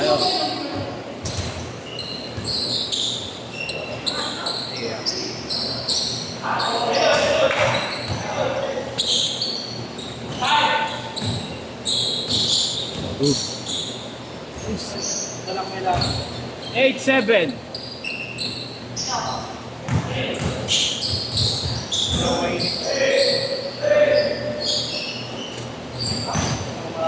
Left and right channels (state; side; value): identical; both; correlation 1.00